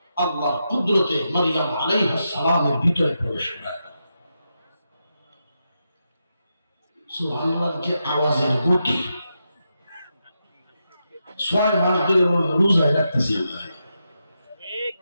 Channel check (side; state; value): both; inverted; correlation -0.86